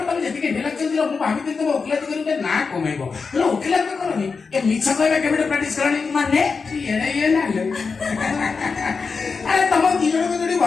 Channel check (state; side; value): quieter; right; 4.9 dB